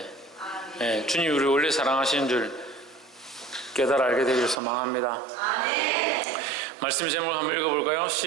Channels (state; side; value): drops out; left; at 4.5 s